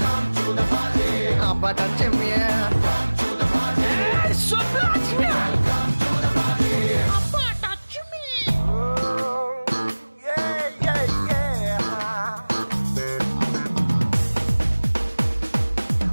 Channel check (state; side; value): inverted; both; correlation -1.00